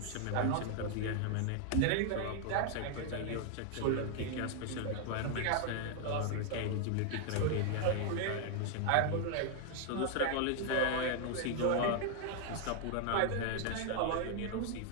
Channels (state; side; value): different; both; correlation 0.00